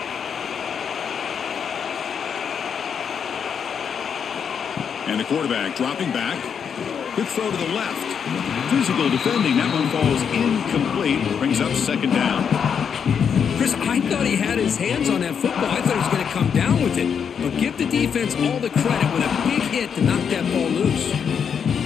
And the quarterback dropping back. Quick throw to the left. Physical defending. That one falls incomplete. Brings up 2nd down. Chris, I thought he had his hands on that football. I thought he was going to come down with it. But give the defense all the credit with a big hit to knock that ball loose.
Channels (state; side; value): quieter; right; 7.2 dB